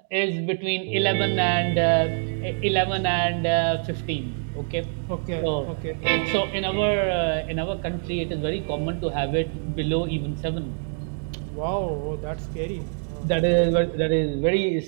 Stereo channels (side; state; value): left; silent; 62 dB below the other